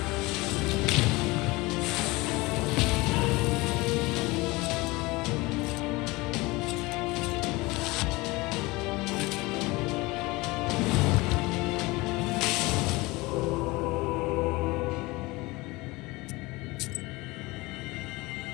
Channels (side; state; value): right; quieter; 22.6 dB